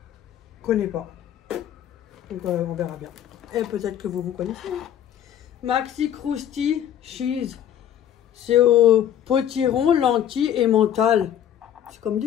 qu'on connaît pas. Donc on verra bien. Et peut-être que vous connaissez. Hein. Maxi Krusty Cheese. C'est au potiron, lentilles et mental. C'est comme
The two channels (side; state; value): right; quieter; 10.2 dB